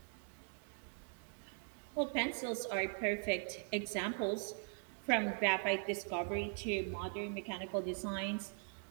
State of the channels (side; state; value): left; silent; 51 dB below the other